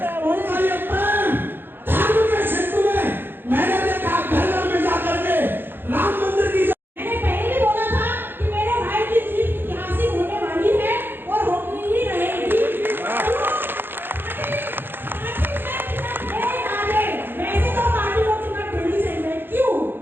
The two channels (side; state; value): left; late; 0.10 ms